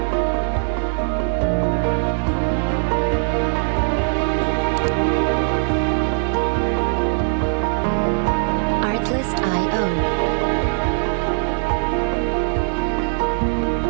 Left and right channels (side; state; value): left; silent; 65 dB below the other